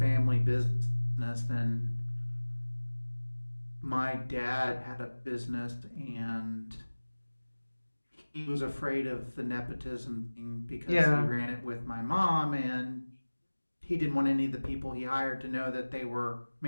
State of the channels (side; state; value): both; inverted; correlation -1.00